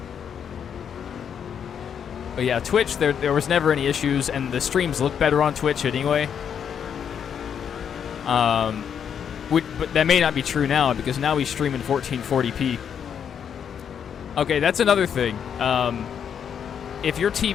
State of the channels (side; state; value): right; quieter; 8.0 dB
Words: yeah, Twitch, there was never any issues, and the streams look better on Twitch anyway. But that may not be true now, because now we stream in 1440p. Okay, that's another thing. If your